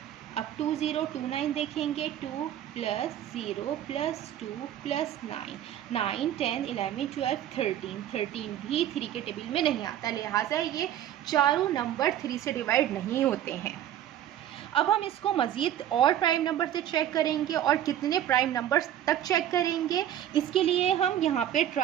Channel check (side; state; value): left; quieter; 11.3 dB